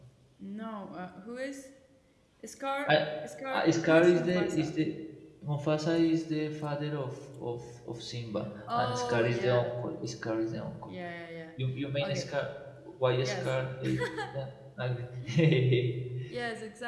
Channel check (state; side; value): identical; both; correlation 1.00